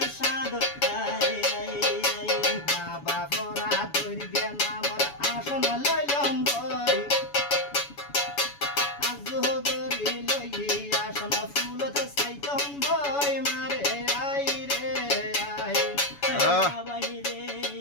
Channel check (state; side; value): late; right; 7.1 ms